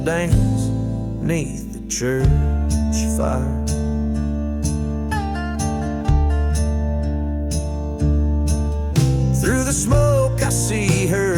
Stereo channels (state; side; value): identical; both; correlation 1.00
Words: dance beneath the church fire. Through the smoke I see